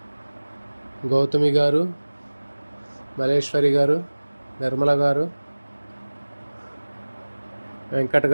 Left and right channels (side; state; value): both; inverted; correlation -1.00